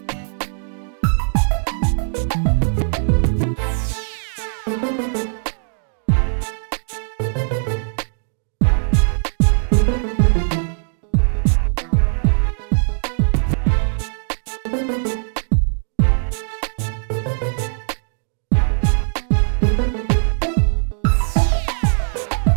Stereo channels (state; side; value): silent; left; digital silence